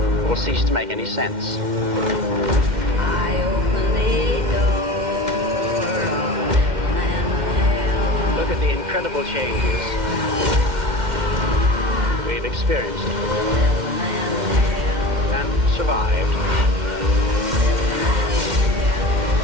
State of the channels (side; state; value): left; late; 2.1 ms